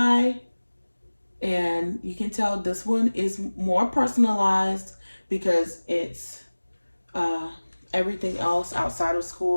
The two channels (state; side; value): inverted; both; correlation -1.00